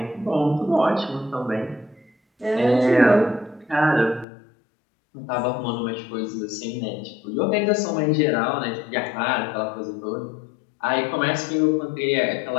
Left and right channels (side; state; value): right; drops out; at 4.2 s